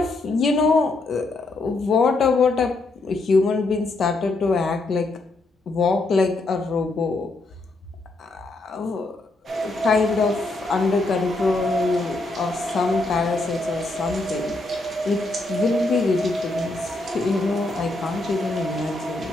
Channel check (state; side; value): quieter; right; 3.0 dB